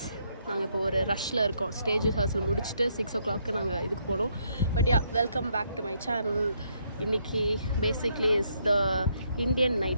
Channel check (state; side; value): inverted; both; correlation -0.73